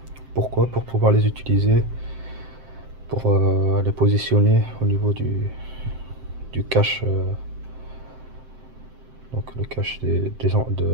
Pourquoi? Pour pouvoir les utiliser, pour les positionner au niveau du cache, donc le cache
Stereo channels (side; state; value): left; late; 7.7 ms